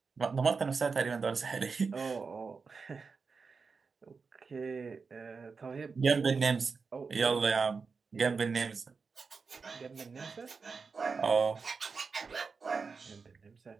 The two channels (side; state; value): left; quieter; 4.9 dB